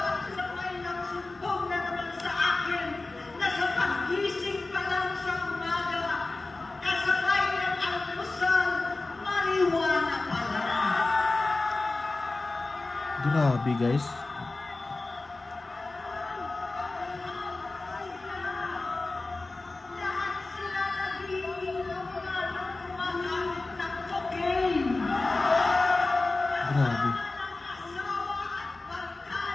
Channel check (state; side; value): quieter; right; 3.3 dB